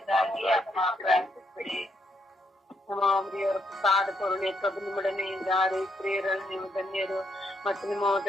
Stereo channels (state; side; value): normal; both; correlation 0.76